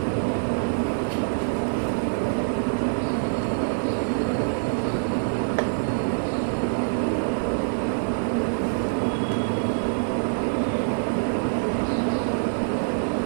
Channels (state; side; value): silent; left; digital silence